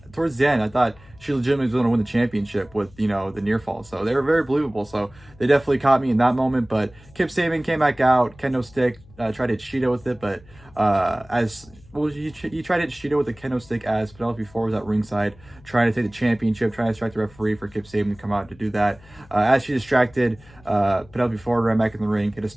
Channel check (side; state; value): left; noise; hum, 24 dB below the sound